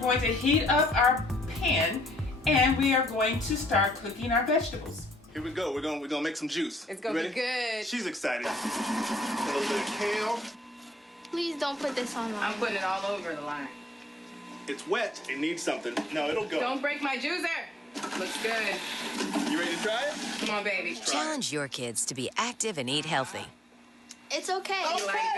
to heat up our pan, and we are going to start cooking our vegetables. Here we go. We're gonna make some juice. It's gonna be good. She's excited. A little bit of kale. Please don't put this on line. I'm putting it all over the line. It's wet. It needs something. No, it'll go. Don't break my juicer. Looks good. You ready to try it? Come on, baby. Challenge your kids to be active and eat healthy. It's okay. You like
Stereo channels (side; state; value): both; normal; correlation 0.70